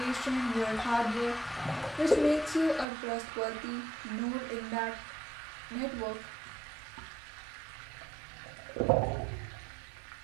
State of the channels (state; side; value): drops out; left; at 2.9 s